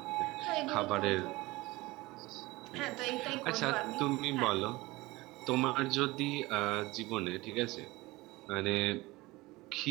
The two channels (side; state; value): left; quieter; 20.9 dB